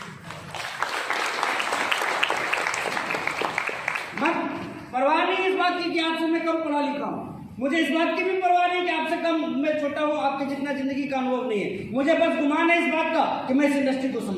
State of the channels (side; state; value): both; identical; correlation 1.00